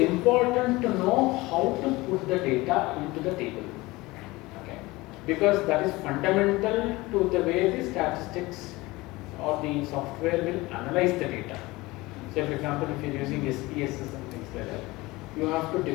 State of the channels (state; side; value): quieter; right; 21.0 dB